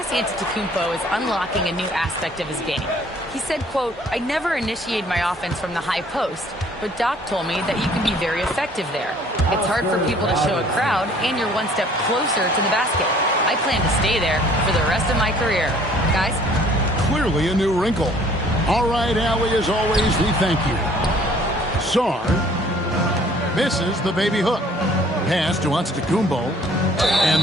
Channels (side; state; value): both; normal; correlation 0.56